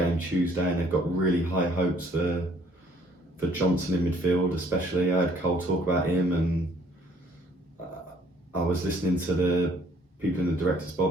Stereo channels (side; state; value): both; normal; correlation 0.61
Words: Tuesday, and they've got really high hopes for Johnson in midfield, especially. I heard Cole talk about him, and I was listening to the people in the director's